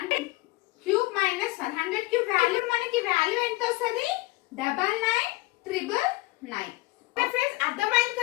క్యూబ్ -1 100 క్యూబ్ వాల్యూ మనకి వాల్యూ ఎంత వస్తుంది? 99,999. ఫ్రెండ్స్ అర్థమైంది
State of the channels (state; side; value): quieter; right; 21.3 dB